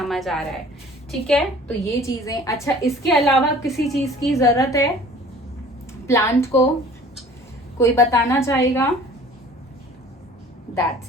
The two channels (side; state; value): both; normal; correlation 0.48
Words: आ रहा है, ठीक है। तो ये चीजें, अच्छा इसके अलावा किसी चीज की जरूरत है प्लांट को, कोई बताना चाहेगा? दैट्स